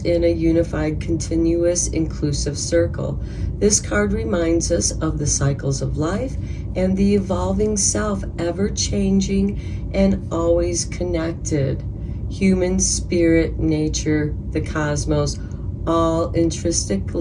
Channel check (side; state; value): both; identical; correlation 1.00